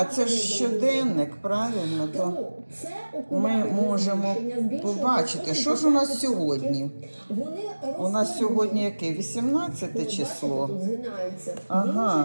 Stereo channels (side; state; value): both; inverted; correlation -1.00